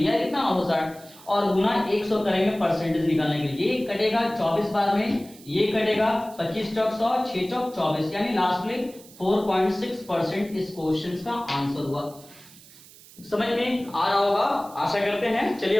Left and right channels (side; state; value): right; noise; hiss, 22 dB below the sound